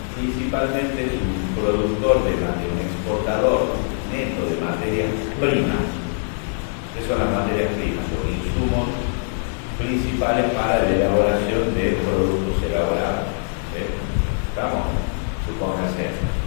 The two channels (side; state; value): right; silent; 64 dB below the other